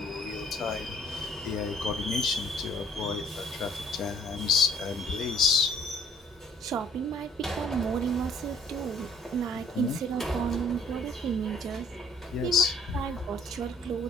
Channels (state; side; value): normal; both; correlation 0.59